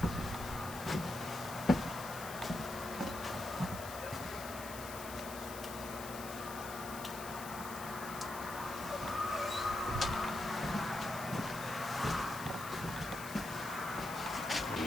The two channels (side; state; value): left; noise; hiss, 11 dB below the sound